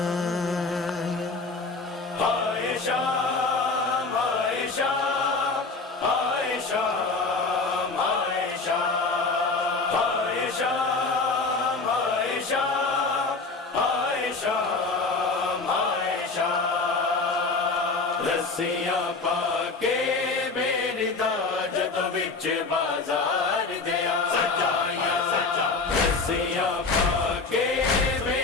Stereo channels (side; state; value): right; quieter; 3.9 dB